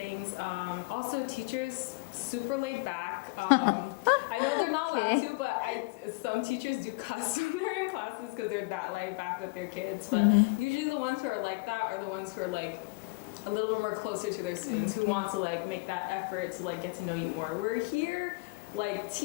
Also, teachers super laid back. I know they're not allowed to, but some teachers do cuss when they're in classes because they're that laid back with their kids. But usually the ones who are like that are the ones who are like a little bit more closer to their students, who want to like make that effort to like get to know you more. We're here. Like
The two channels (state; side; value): quieter; right; 26.6 dB